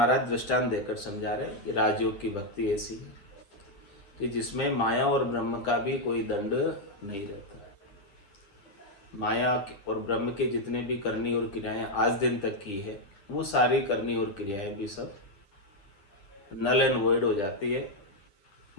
दृष्टांत देकर समझा रहे कि राजयोग की भक्ति ऐसी है कि जिसमें माया और ब्रह्म का भी कोई दंड नहीं रहता। माया और ब्रह्म के जितने भी करनी और क्रियाएं आज दिन तक की है वो सारी करनी और क्रियाएं भी सब नल एंड वॉइड हो जाती है,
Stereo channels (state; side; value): late; right; 10 ms